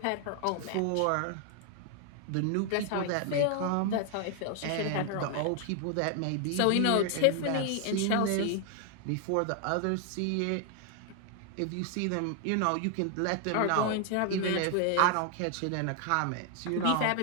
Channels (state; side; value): different; both; correlation 0.00